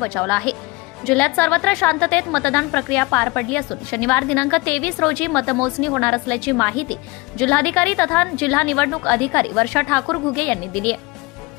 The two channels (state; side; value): quieter; right; 24.4 dB